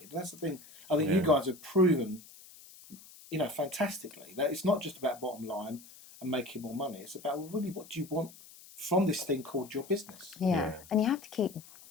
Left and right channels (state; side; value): noise; left; hiss, 20 dB below the sound